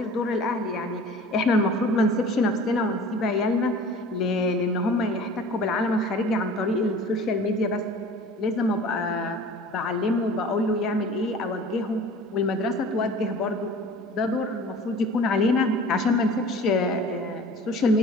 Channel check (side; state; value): both; normal; correlation 0.43